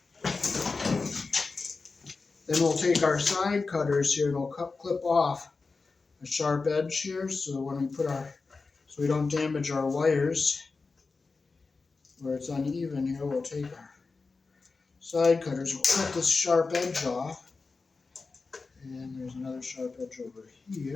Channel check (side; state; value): right; quieter; 4.2 dB